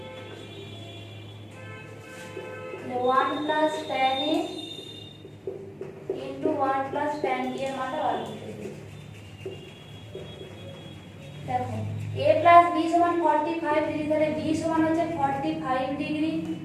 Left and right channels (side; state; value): both; identical; correlation 1.00